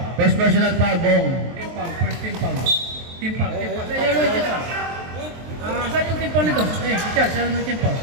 First personal foul, Bong. First team foul. Team foul. Yellow yung team foul. Saan yung team foul nito? Richard, saan yung team foul?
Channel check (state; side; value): late; left; 23 ms